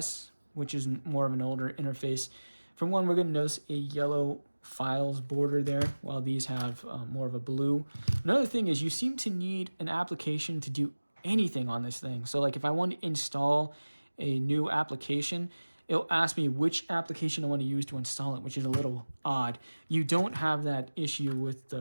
which is more of an older interface, for one, we're going to notice a yellow files border there, while these have more of a blue. Another thing is you seem to need an application to do anything on this thing. So like if I want to install a new application, it'll ask me which application I want to use to install it, which is a little odd. You don't have that issue with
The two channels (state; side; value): inverted; both; correlation -1.00